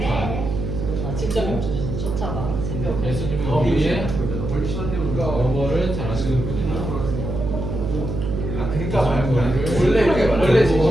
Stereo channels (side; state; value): right; noise; hum, 4 dB below the sound